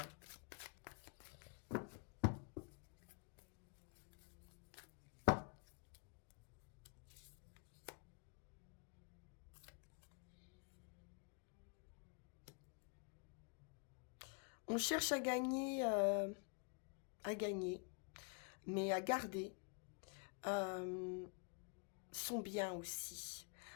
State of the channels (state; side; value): quieter; right; 36.8 dB